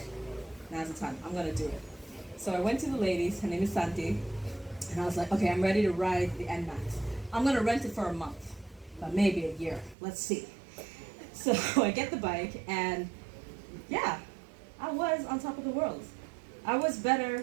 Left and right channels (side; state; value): left; drops out; at 10.0 s